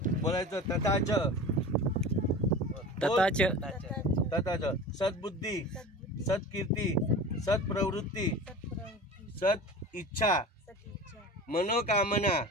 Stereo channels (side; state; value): both; normal; correlation 0.35